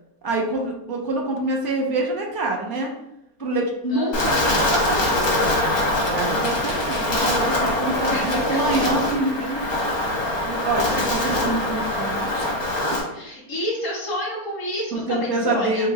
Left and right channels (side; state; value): right; late; 4.3 ms